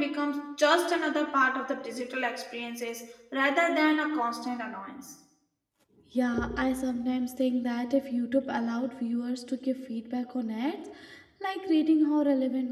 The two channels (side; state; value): both; identical; correlation 1.00